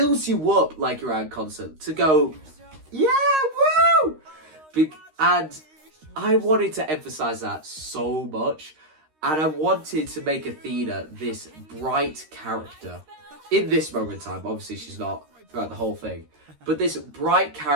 you up like you're at a concert to go, yeah, woo! And I wanted to emphasize that so much, and I wanted to make Athena this bright character in this moment in time. Obviously, she's not throughout the whole thing, but this bright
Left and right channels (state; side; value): late; left; 13 ms